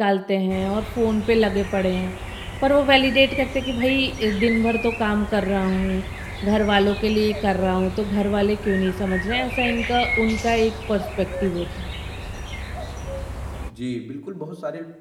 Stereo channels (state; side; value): identical; both; correlation 1.00